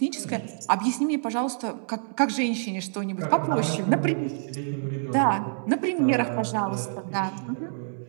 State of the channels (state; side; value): silent; left; 60 dB below the other